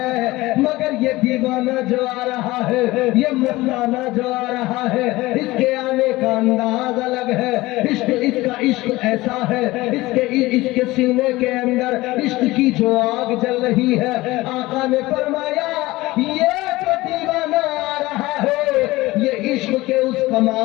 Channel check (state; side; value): quieter; right; 19.3 dB